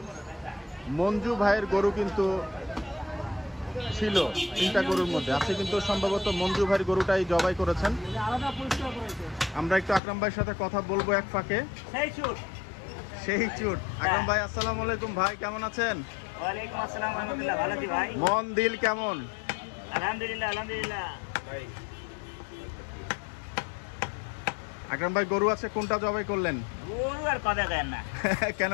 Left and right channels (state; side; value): drops out; right; at 10.0 s